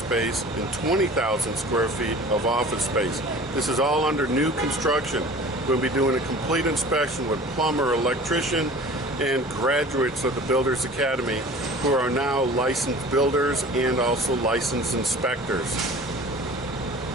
space and 20,000 square feet of office space. This is all under new construction. We'll be doing a complete inspection with plumber, electrician, and graduates of the Builders Academy who are now licensed builders and also licensed inspectors.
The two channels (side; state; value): both; normal; correlation 0.42